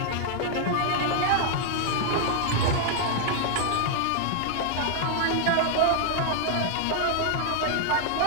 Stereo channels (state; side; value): different; both; correlation 0.00